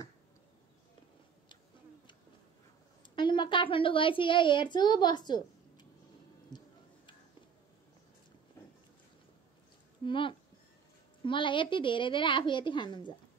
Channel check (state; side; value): quieter; left; 6.6 dB